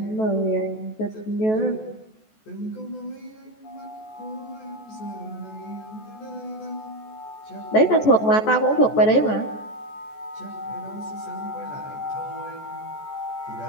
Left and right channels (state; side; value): late; right; 14 ms